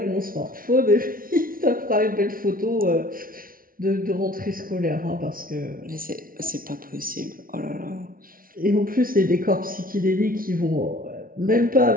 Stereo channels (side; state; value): left; late; 0.42 ms